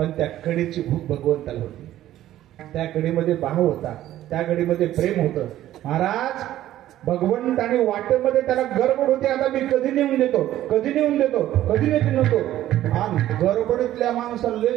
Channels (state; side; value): quieter; left; 13.4 dB